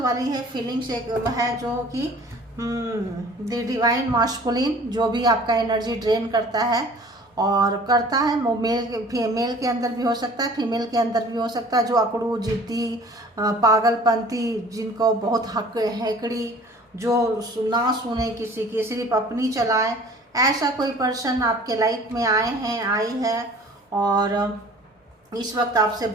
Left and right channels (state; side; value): normal; both; correlation 0.48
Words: है फीलिंग्स एक है, जो कि द डिवाइन मास्कुलिन, जो भी आपका एनर्जी ड्रेन करता है और करता है, वो मेल के अंदर भी हो सकता है, फीमेल के अंदर भी हो सकता है। जो अकड़ू, जिद्दी, पागलपंती, जिनको बहुत हक हैकड़ी, जो ना सुने किसी की, सिर्फ अपनी चलाए, ऐसा कोई पर्सन आपके लाइफ में आए हैं, आई है, और इस वक्त आपसे